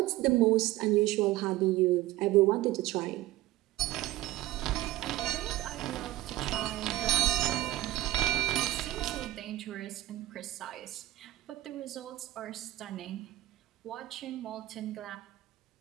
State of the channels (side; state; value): left; quieter; 16.1 dB